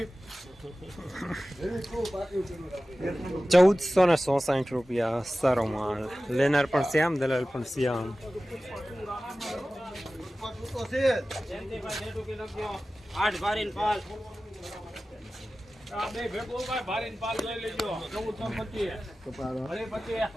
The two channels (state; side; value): normal; both; correlation 0.96